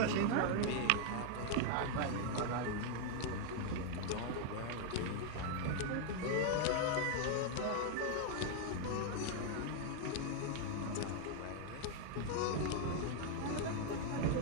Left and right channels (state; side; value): different; both; correlation 0.00